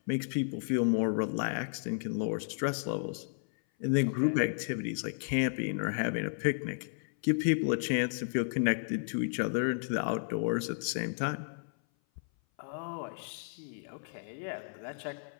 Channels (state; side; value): silent; right; 56 dB below the other